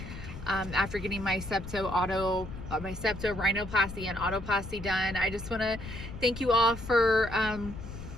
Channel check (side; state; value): left; noise; rumble, 11 dB below the sound